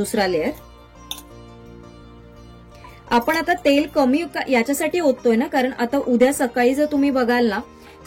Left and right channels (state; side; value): identical; both; correlation 1.00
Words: लेअर. आपण आता तेल कमी याच्यासाठी ओततोय ना, कारण आता उद्या सकाळी जर तुम्ही बघाल ना